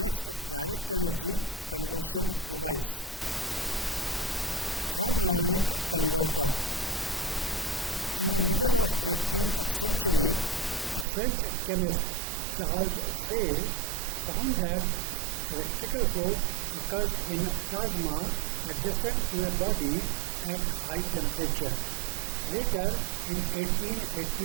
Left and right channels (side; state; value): left; drops out; at 11.1 s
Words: direct energy conversion device. Therm-ionic converter. In the middle of 18th century, a French chemist, Charles Fay, found that electrical flow occurs in plasma adjacent to a body at high temperature. Later, in